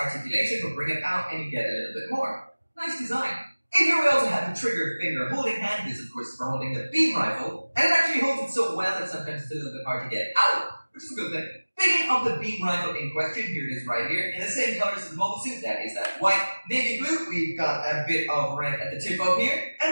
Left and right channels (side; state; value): both; inverted; correlation -1.00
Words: but bring it out and you get a little bit more. Nice design. In here we also have the trigger finger holding hand. This of course is for holding the beam rifle, and it actually holds it so well that sometimes it's a little bit hard to get out, which is a good thing. Picking up the beam rifle in question, here it is right here, in the same colors as the mobile suit, that is that white, navy blue. We've got a bit of red at the tip up here,